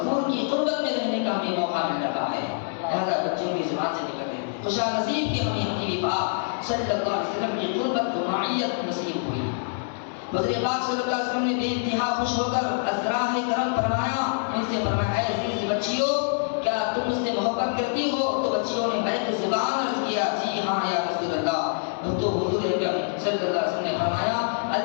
کی قربت میں رہنے کا ہمیں موقع مل رہا ہے. لہذا بچوں کی زبان سے نکل رہے ہیں خوشا نصیب کہ ہمیں حبیب پاک صلی اللہ علیہ وسلم کی قربت و معیت نصیب ہوئی. حضور پاک صلی اللہ علیہ وسلم نے بے انتہا خوش ہو کر ازراہ کرم فرمایا، ان سے فرمایا اے عزیز بچیوں کیا تم مجھ سے محبت کرتی ہو؟ تو بچیوں نے بیک زبان عرض کیا جی ہاں یا رسول اللہ. تو حضور اکرم صلی اللہ علیہ وسلم نے فرمایا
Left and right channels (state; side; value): silent; right; 61 dB below the other